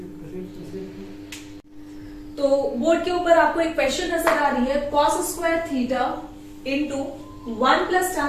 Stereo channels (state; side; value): identical; both; correlation 1.00